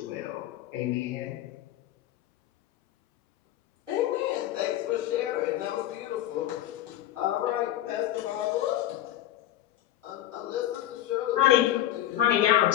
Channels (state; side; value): quieter; right; 13.1 dB